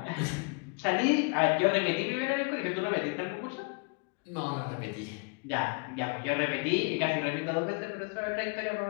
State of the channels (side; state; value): right; quieter; 32.7 dB